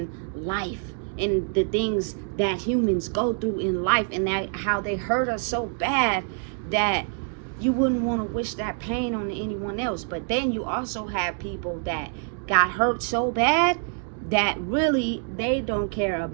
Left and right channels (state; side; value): silent; left; 55 dB below the other